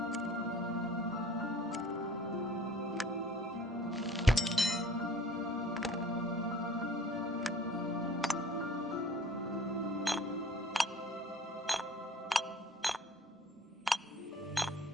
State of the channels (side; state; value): both; normal; correlation 0.48